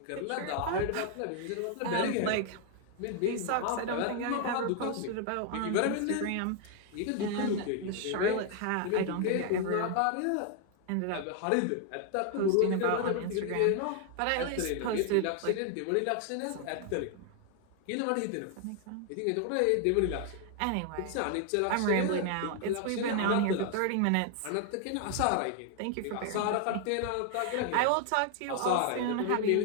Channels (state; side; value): different; both; correlation 0.00